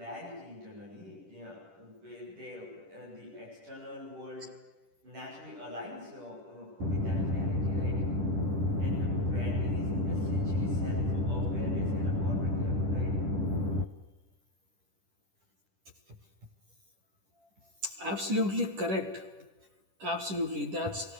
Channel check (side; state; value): left; late; 10 ms